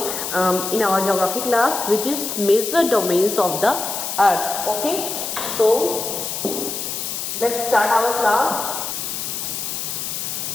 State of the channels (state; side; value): noise; left; hiss, 4 dB below the sound